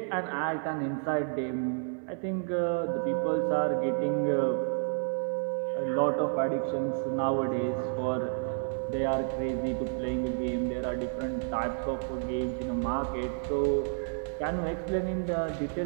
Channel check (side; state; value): left; silent; digital silence